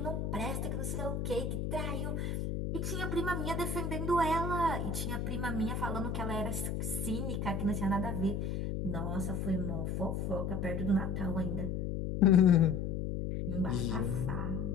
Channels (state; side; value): noise; left; hum, 2 dB below the sound